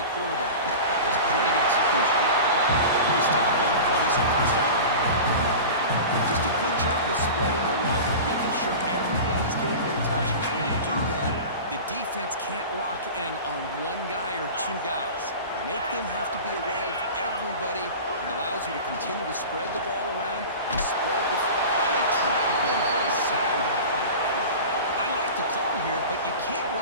quarterback. That was great execution. They stop him, but it's a first down. Just a good job of spreading the wealth, making sure everybody's getting their touches. When you do that, the defense can't lock in on one guy or two guys. Make them have to be aware of everybody. It allows you to continue to spread the ball around and spread the I like the call here, but you can't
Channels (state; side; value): inverted; both; correlation -0.33